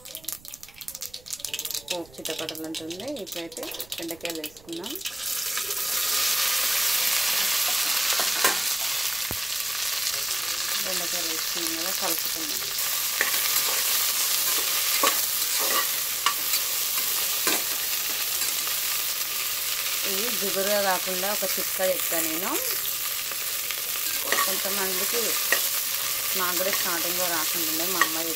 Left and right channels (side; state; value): right; noise; rumble, 24 dB below the sound